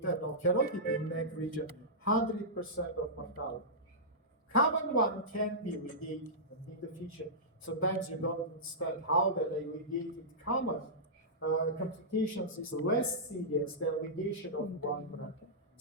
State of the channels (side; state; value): both; normal; correlation -0.14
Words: carotid in neck region, 100% of mortality. Common one can be ligated in the future. Sometimes you don't understand how that a ligated common complications is less serious than ligation of one brand.